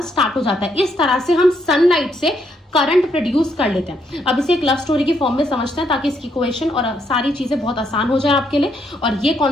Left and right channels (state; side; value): normal; both; correlation 0.75